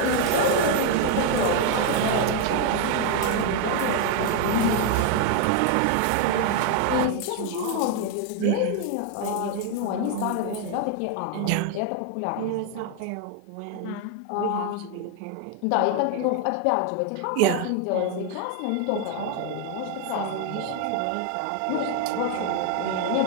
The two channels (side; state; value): both; different; correlation 0.01